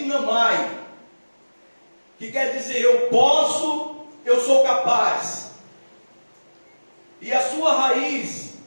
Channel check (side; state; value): both; inverted; correlation -1.00